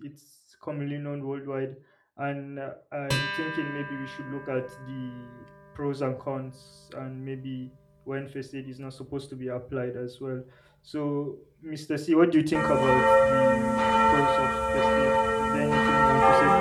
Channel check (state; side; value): identical; both; correlation 1.00